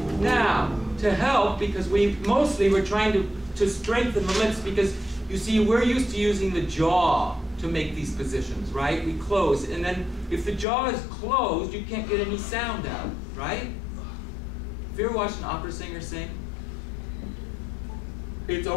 Now, to help, because we're trying to strengthen the lips, because you see, we're used to using the jaw to make these positions, right? We close, and then if the jaw is closed, you can't get any sound out, right? Have you ever watched an opera singer sing? It's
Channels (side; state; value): right; drops out; at 10.7 s